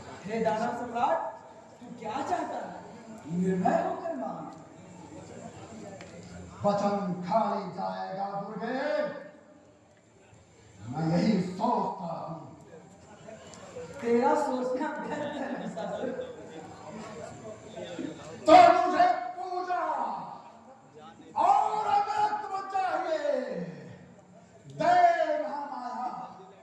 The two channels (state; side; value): identical; both; correlation 1.00